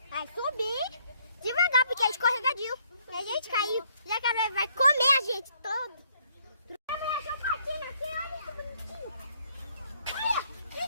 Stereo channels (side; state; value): both; inverted; correlation -0.68